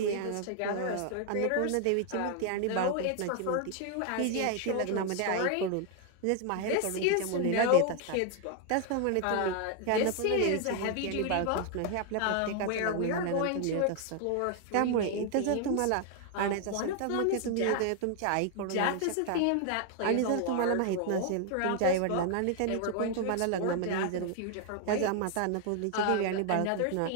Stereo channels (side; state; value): both; different; correlation 0.00